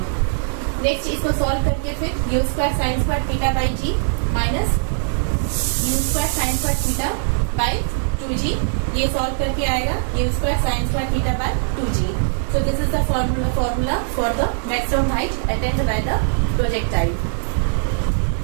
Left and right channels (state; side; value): silent; left; digital silence